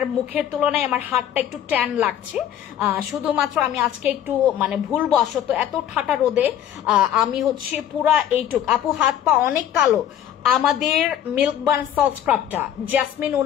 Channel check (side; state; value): right; quieter; 10.6 dB